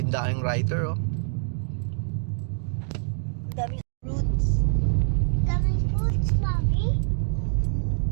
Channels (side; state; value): left; silent; digital silence